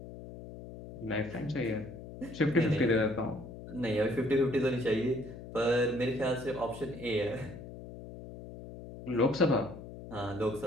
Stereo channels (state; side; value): noise; left; hum, 13 dB below the sound